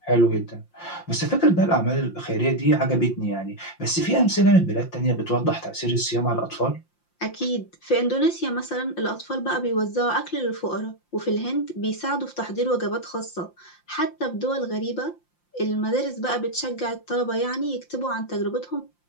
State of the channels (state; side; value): late; right; 5.7 ms